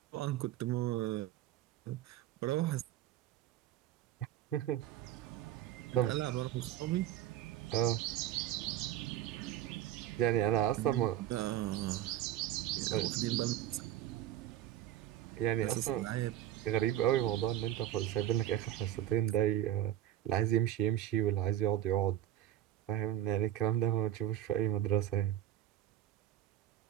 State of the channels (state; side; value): quieter; left; 12.7 dB